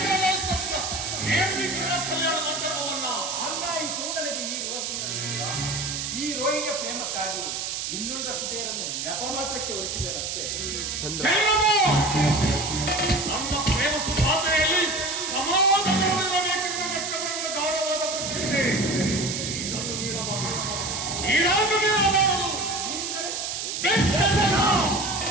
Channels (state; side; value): noise; right; hiss, 3 dB below the sound